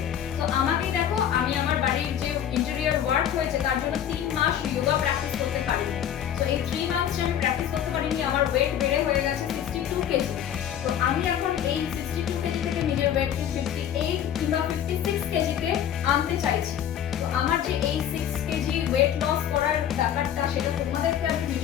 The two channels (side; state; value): right; quieter; 9.8 dB